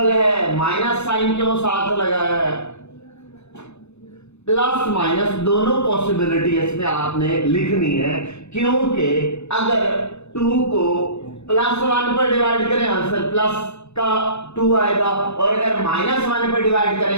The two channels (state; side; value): late; right; 0.81 ms